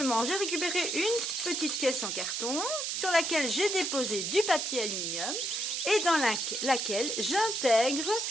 j'ai récupéré une petite caisse en carton sur laquelle j'ai déposé du papier aluminium et dans laquelle j'intègre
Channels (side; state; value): right; noise; hiss, 1 dB below the sound